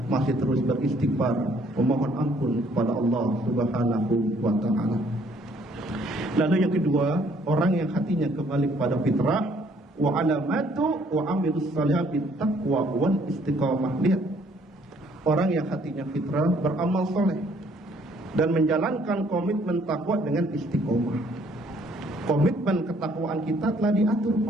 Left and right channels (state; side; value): normal; both; correlation 0.63